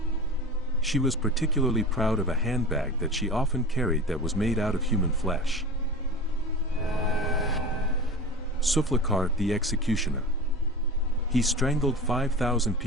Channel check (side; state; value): both; normal; correlation 0.32